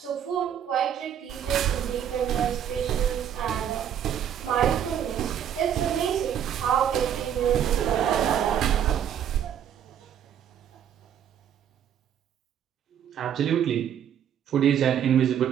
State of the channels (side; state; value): left; quieter; 9.4 dB